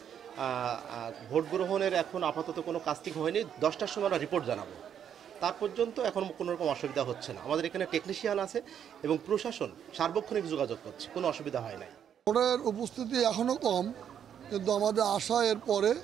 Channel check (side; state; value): left; quieter; 8.8 dB